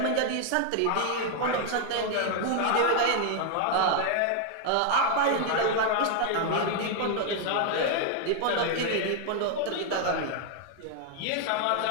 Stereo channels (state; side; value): different; both; correlation 0.00